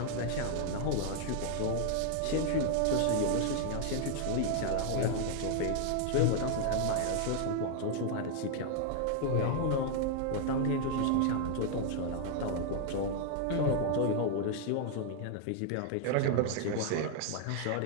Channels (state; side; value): different; both; correlation 0.00